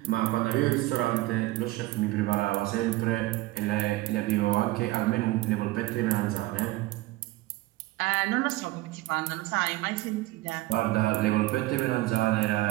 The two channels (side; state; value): left; quieter; 18.5 dB